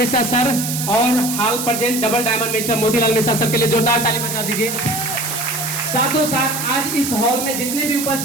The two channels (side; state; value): right; noise; hiss, 4 dB below the sound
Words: sir और हाल present double diamond mister Motilal Mishra sir के लिए जोरदार ताली बजा दीजिए। साथों साथ आज इस हॉल में जितने भी